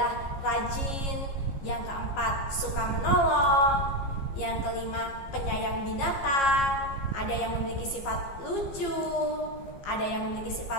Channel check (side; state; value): right; late; 15 ms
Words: rajin, yang keempat suka menolong, yang kelima penyayang binatang. Ada yang memiliki sifat lucu, ada yang memiliki